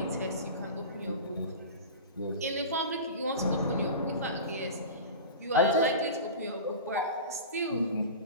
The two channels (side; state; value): both; inverted; correlation -0.31